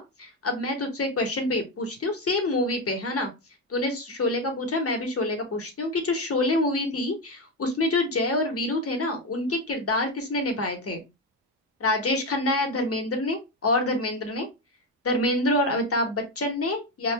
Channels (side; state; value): both; normal; correlation 0.12